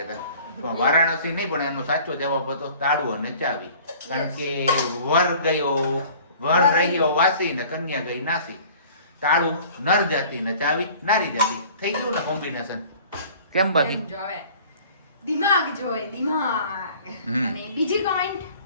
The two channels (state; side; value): inverted; both; correlation -0.49